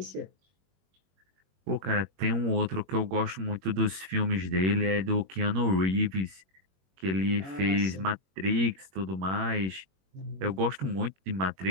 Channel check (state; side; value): late; left; 21 ms